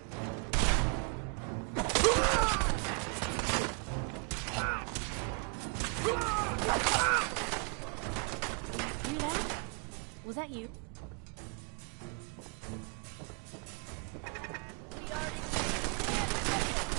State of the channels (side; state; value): left; quieter; 37.5 dB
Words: Hear that? Was that you?